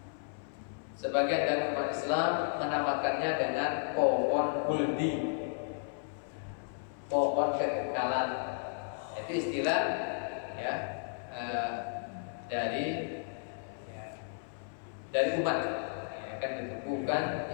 dari umat Islam menamakannya dengan pohon huldi, pohon kekekalan. Itu istilah ya dari umat. Kan itu bukan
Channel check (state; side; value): silent; right; 55 dB below the other